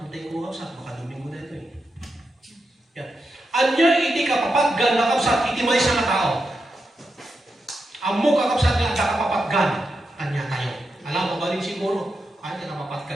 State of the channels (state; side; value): normal; both; correlation 0.87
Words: ko kapsat. Makaduming mo na ito eh. Yan. Anya iti kapapaggan nga kapsat. Iti may sa tao. Amo kakapsat nga at kapapaggan kanya tayo. Alam mo ba rin siguro? Kanya